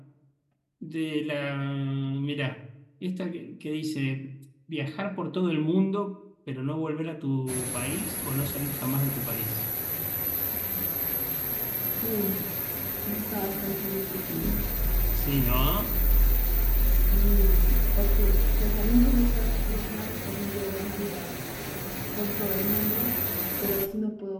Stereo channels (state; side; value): identical; both; correlation 1.00